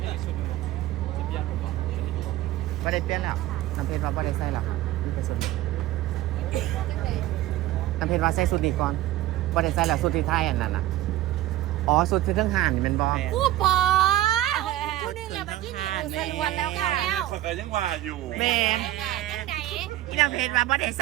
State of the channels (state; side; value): quieter; left; 14.8 dB